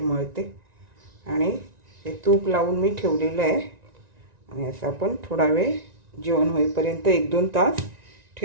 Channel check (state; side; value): late; left; 1.9 ms